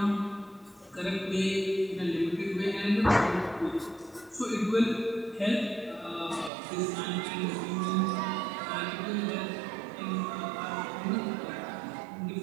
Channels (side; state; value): left; drops out; at 6.5 s